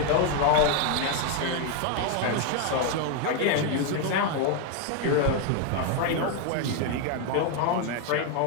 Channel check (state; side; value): different; both; correlation 0.01